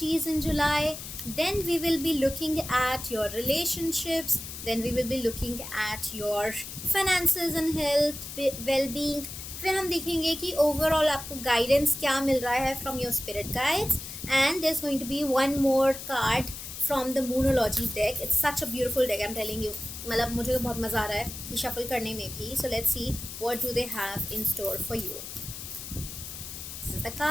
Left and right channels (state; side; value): noise; left; hiss, 10 dB below the sound